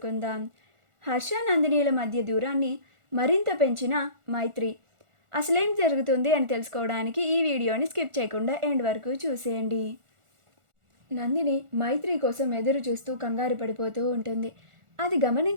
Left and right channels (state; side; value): late; left; 1.4 ms